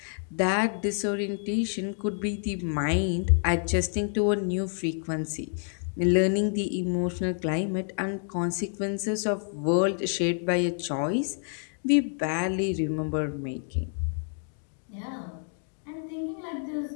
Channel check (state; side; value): silent; right; 58 dB below the other